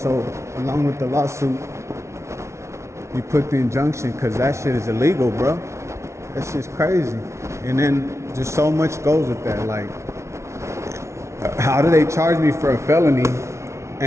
along with the lawsuit, you put the injunction because that shit is illegal, bro. That shit's crazy. And then just so much goes with that. Like, how do they charge me for a felony?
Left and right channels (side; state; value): left; late; 0.13 ms